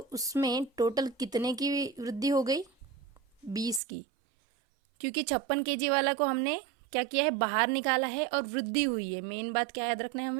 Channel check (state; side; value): drops out; left; at 3.8 s